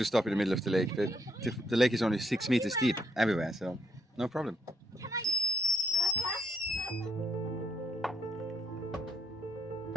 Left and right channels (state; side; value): normal; both; correlation 0.72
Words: stop in the middle of the lake, but the lake is only 6 meters deep everywhere, so no problem.